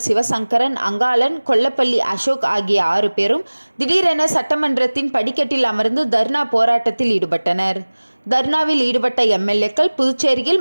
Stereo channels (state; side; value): inverted; both; correlation -1.00